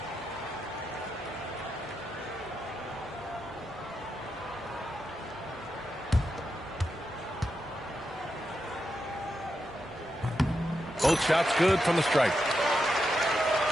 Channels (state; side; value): normal; both; correlation 0.86